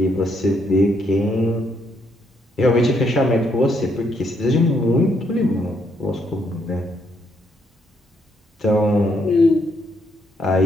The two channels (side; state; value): both; normal; correlation 0.74